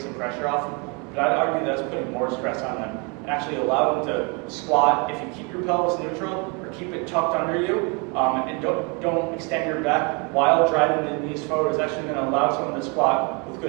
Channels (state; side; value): quieter; left; 32.2 dB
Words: some pressure off. But I'd argue that's putting more stress on them and actually allow them to squat. If you keep your pelvis neutral or keep it tucked under you and don't extend your back while driving the knees forward, is actually going to allow someone to squat with